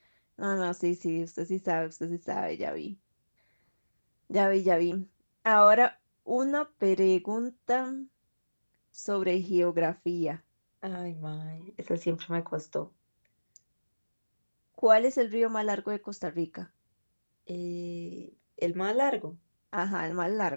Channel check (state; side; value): inverted; both; correlation -1.00